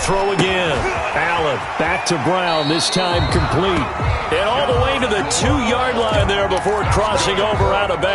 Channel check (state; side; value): identical; both; correlation 1.00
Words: again. Allen back to Brown, this time complete. And all the way to the 2-yard line there before crossing over out of